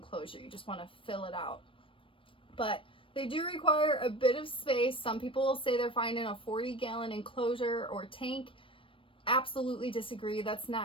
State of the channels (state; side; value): late; right; 0.25 ms